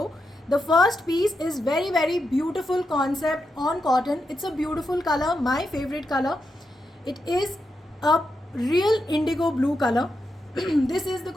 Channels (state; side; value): normal; both; correlation 0.86